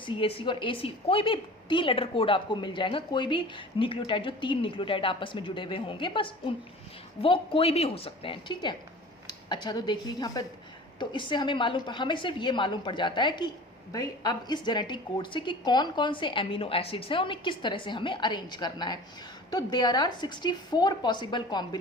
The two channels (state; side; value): normal; both; correlation 0.40